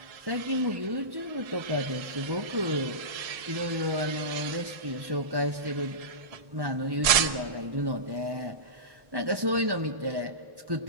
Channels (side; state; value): left; late; 1.7 ms